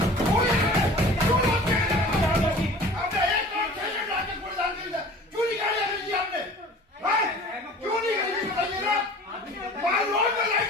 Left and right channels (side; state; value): both; normal; correlation 0.44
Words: क्यों नहीं निकाली अंग्रेजी आपने? क्यों नहीं खरीदी बताइए ना। मान रोड में लाइट